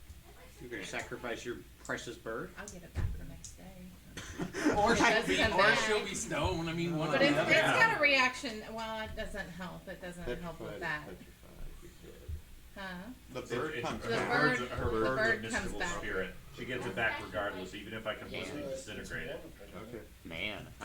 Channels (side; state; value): both; identical; correlation 1.00